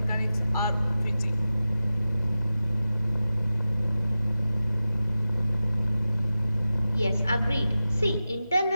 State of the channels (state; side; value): inverted; both; correlation -0.94